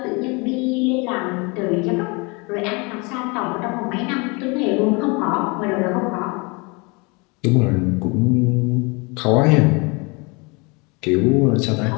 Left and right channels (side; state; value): right; quieter; 29.0 dB